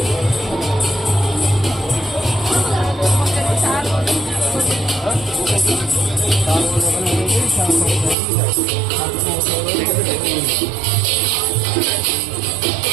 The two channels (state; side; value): drops out; left; at 8.2 s